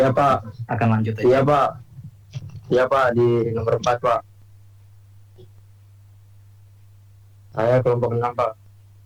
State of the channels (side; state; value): both; identical; correlation 1.00